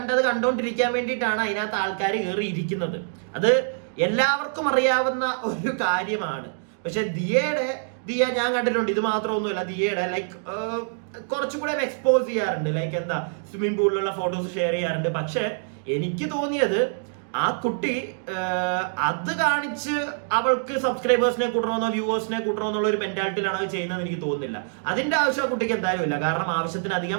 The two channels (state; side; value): silent; left; digital silence